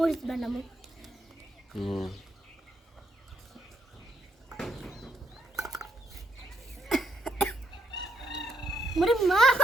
বানাবো। হুম। মরে মা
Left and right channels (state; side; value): normal; both; correlation 0.76